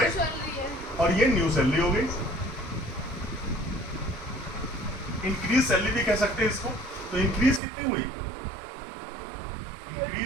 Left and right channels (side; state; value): left; drops out; at 7.6 s